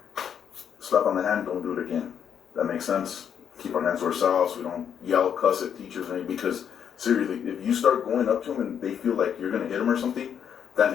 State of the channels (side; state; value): right; quieter; 8.3 dB